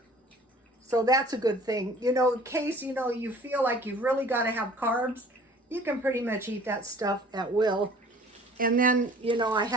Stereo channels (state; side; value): normal; both; correlation 0.50